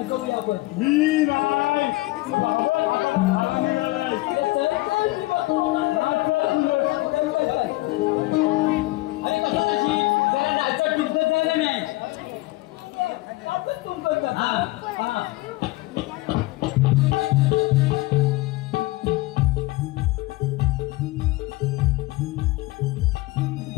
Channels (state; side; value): quieter; right; 20.1 dB